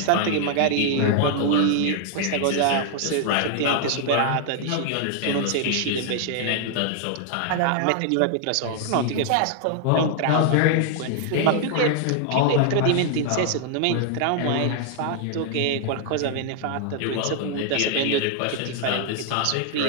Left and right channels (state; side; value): different; both; correlation 0.00